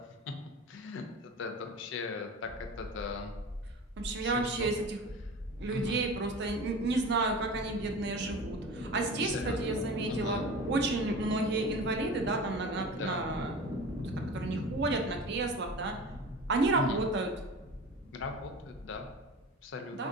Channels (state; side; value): normal; both; correlation 0.35